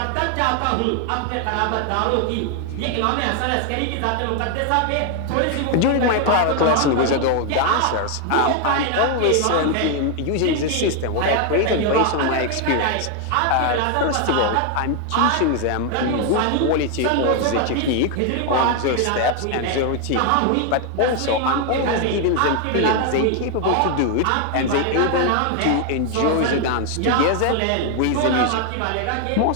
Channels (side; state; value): both; different; correlation 0.00